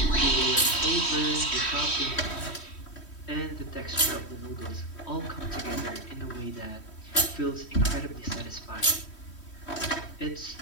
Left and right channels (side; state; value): right; late; 3.1 ms